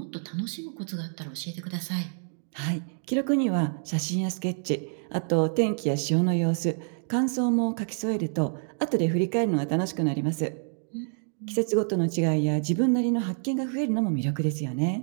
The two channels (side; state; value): left; silent; 60 dB below the other